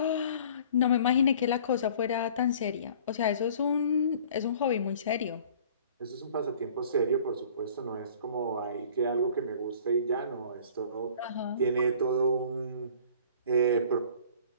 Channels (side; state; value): both; inverted; correlation -0.49